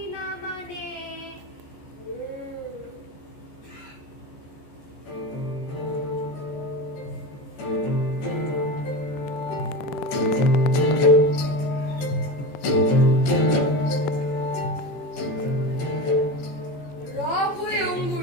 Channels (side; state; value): right; late; 14 ms